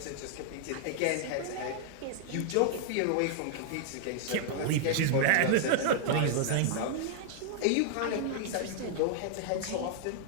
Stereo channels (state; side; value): different; both; correlation -0.01